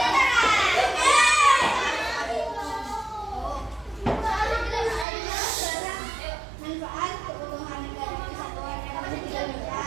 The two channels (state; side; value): drops out; left; at 5.1 s